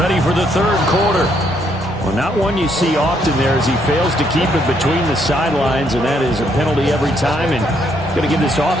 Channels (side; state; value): both; normal; correlation 0.72